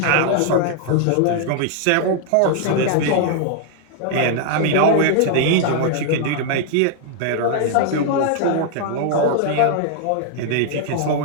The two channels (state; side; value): different; both; correlation 0.00